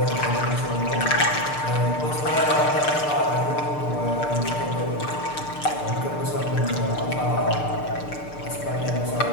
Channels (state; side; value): late; right; 6.7 ms